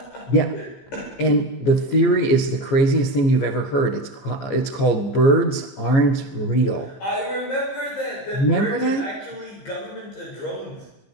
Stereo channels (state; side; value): late; right; 15 ms